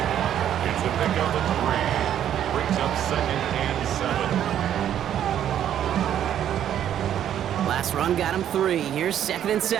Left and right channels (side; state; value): left; quieter; 10.4 dB